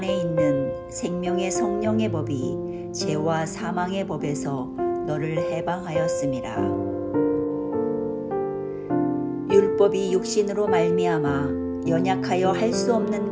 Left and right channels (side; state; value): both; identical; correlation 1.00